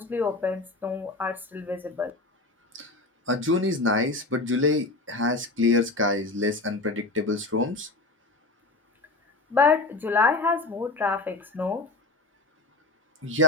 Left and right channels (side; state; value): right; quieter; 3.1 dB